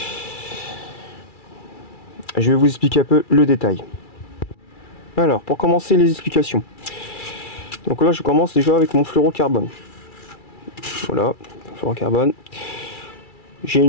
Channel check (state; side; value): late; right; 2.3 ms